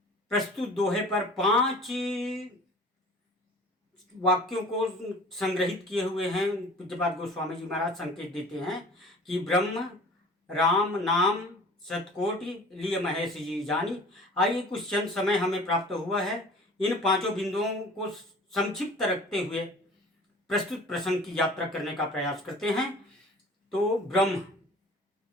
प्रस्तुत दोहे पर 5 वाक्यों को संग्रहित किए हुए हैं। पूज्यपाद गोस्वामी जी महाराज संकेत देते हैं कि ब्रह्म राम नाम शतकोटि लिय महेश जी जानी। आइए कुछ क्षण समय हमें प्राप्त हुआ है, इन 5 बिंदुओं को संक्षिप्त रखते हुए प्रस्तुत प्रसंग की यात्रा करने का प्रयास करते हैं। तो ब्रह्म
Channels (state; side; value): normal; both; correlation 0.45